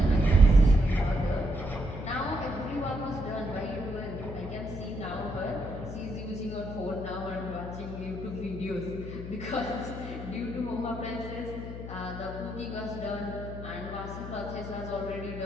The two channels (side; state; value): left; noise; hum, 8 dB below the sound